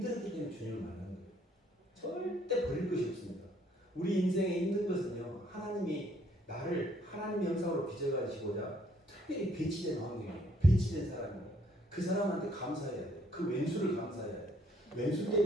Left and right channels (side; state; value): both; normal; correlation 0.65